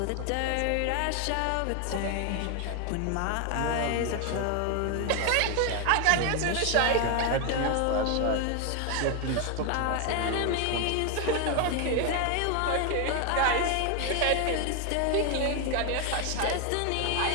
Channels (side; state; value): both; different; correlation 0.01